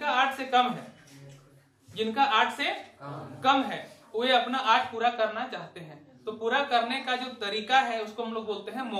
8 से कम है, जिनका 8 से कम है, वे अपना 8 पूरा करना चाहते हैं। तो पूरा करने का जो तरीका है उसको हम लोग बोलते हैं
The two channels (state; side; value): identical; both; correlation 1.00